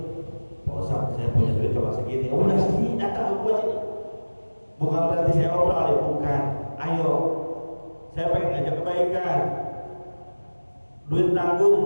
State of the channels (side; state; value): both; inverted; correlation -1.00